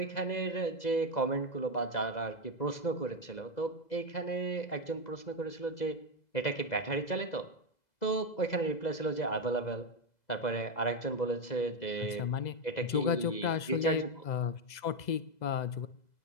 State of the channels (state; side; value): late; right; 2.0 ms